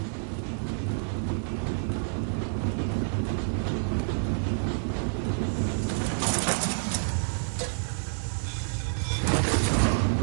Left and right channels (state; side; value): silent; left; digital silence